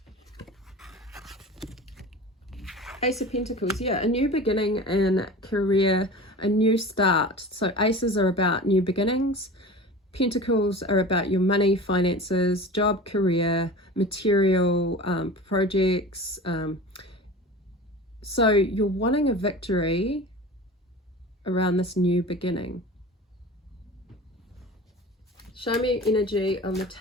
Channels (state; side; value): normal; both; correlation 0.35